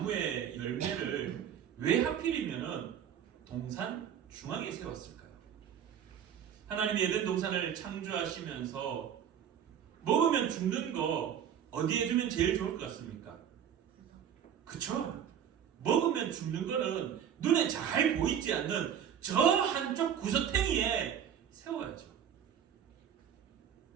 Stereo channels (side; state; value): left; quieter; 9.0 dB